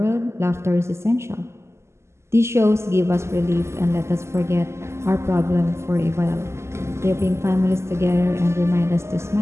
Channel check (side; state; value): left; late; 0.13 ms